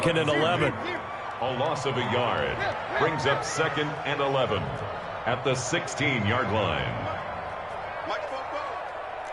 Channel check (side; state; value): both; identical; correlation 1.00